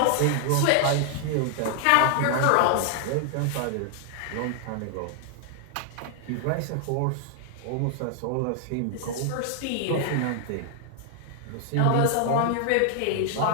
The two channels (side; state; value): both; different; correlation 0.00